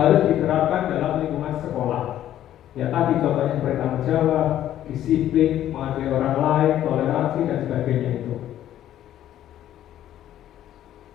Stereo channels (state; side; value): quieter; right; 12.0 dB